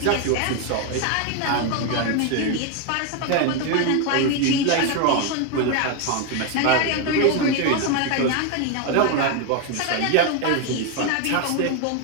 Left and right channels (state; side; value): different; both; correlation 0.01